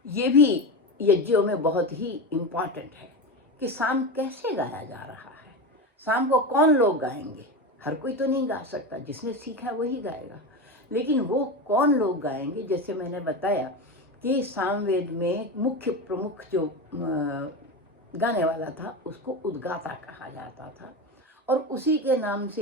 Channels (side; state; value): both; normal; correlation 0.20